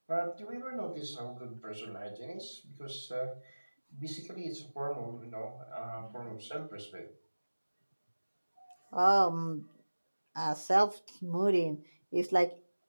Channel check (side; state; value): both; inverted; correlation -1.00